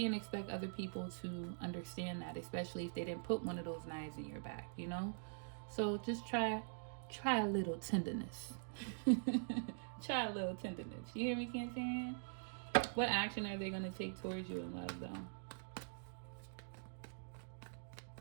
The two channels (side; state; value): left; silent; digital silence